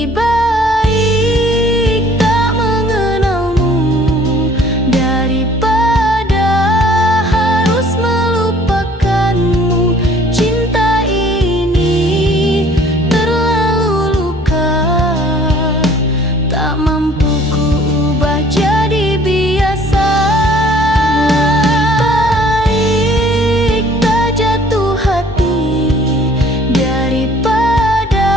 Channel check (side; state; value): both; normal; correlation 0.55